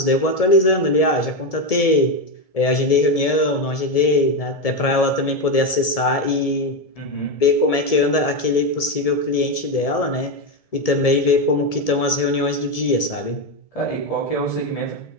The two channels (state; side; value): late; right; 1.7 ms